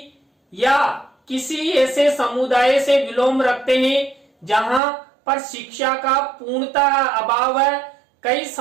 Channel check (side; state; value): left; drops out; at 4.8 s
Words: या किसी ऐसे समुदाय से विलोम रखते हैं जहां पर शिक्षा का पूर्णतः अभाव है। कई